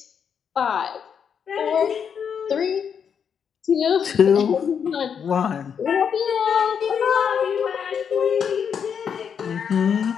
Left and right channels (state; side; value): quieter; right; 7.3 dB